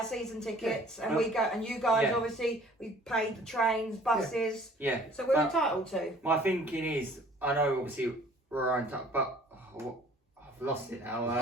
season tickets, and we go. And you guys, obviously, we paid the trains, buses. Yeah. So we're entitled to. My thinking is, I know obviously we're on top, but I've lost it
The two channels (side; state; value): both; normal; correlation 0.53